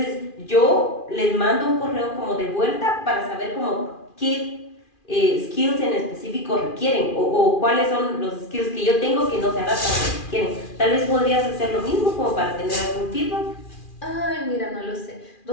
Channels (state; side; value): late; right; 2.4 ms